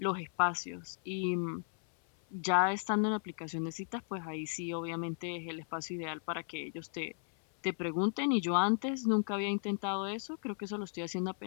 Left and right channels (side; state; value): right; silent; 54 dB below the other